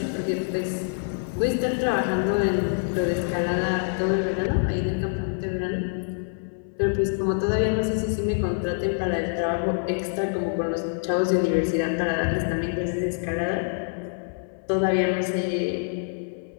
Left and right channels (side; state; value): right; silent; 61 dB below the other